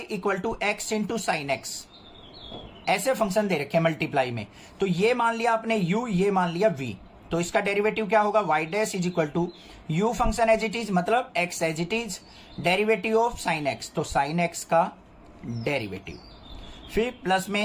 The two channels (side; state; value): both; identical; correlation 1.00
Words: equal to x into sine x, ऐसे फंक्शन दे रखे हैं मल्टीप्लाई में। तो ये मान लिया आपने u, ये मान लिया v, तो इसका डेरिवेटिव क्या होगा? y dash is equal to u function as it is, मतलब x as it is, derivative of sine x, तो साइन x का डेरिवेटिव, फिर प्लस